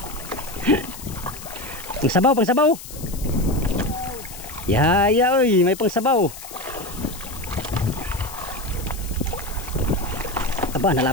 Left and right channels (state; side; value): noise; left; hiss, 14 dB below the sound